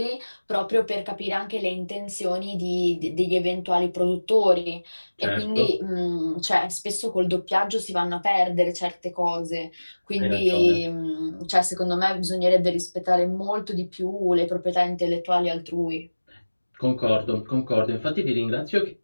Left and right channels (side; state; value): both; inverted; correlation -1.00